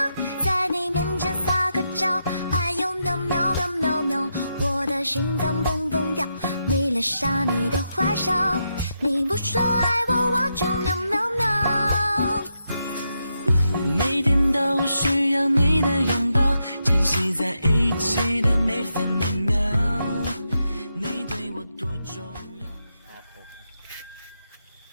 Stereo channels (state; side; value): inverted; both; correlation -0.84